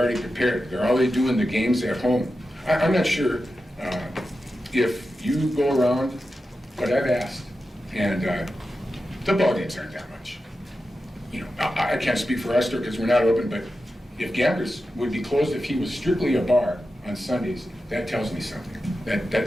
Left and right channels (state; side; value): normal; both; correlation 0.91